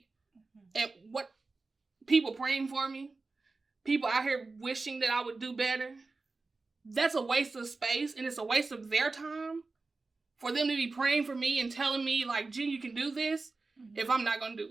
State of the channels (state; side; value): quieter; left; 3.8 dB